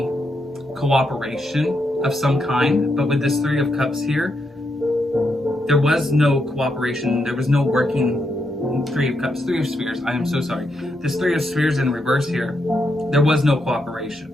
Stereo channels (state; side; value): normal; both; correlation 0.81